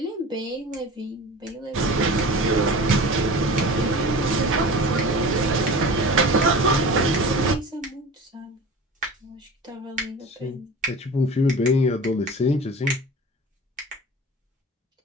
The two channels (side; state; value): both; normal; correlation 0.37